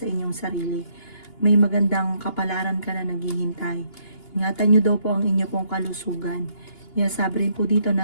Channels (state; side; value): late; right; 2.8 ms